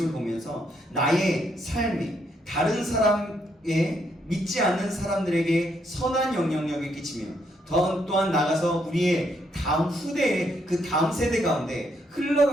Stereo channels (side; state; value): both; normal; correlation 0.74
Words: 보면서 나의 삶이 다른 사람의 믿지 않는 사람들에게 선한 영향력을 끼치며 또한 나가서 우리의 다음 후대의 그 다음 세대 가운데